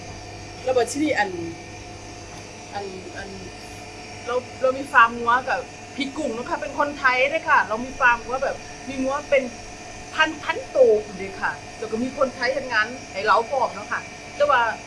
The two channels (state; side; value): identical; both; correlation 1.00